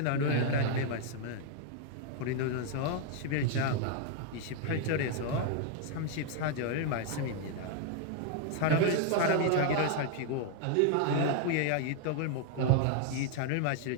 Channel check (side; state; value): both; different; correlation 0.00